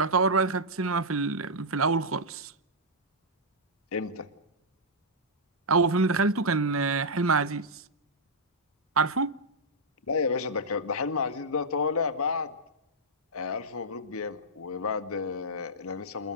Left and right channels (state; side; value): normal; both; correlation -0.08